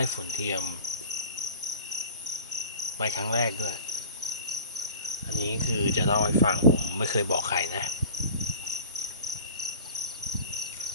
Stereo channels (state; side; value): inverted; both; correlation -0.41